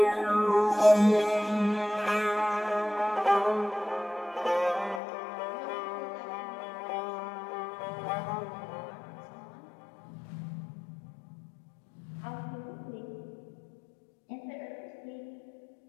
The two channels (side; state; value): right; drops out; at 5.0 s